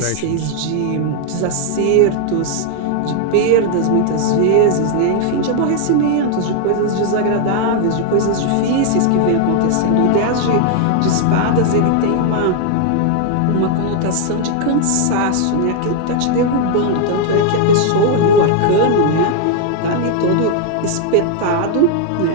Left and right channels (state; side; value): different; both; correlation 0.00